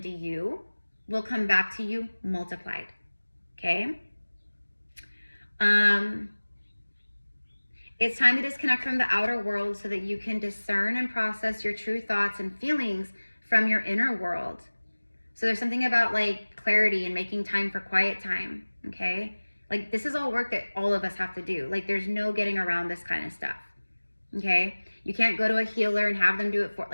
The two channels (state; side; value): inverted; both; correlation -1.00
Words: you will come back to you multiplied. Okay? It's time to disconnect from the outer world so that you can discern and process your true thoughts and feelings from your inner world. So there's something about like clarity and making time for quiet time, okay? Like this is all work that all of us have to do. Like there's no getting around this kind of stuff, okay? You can't go to a healer and have them do it for,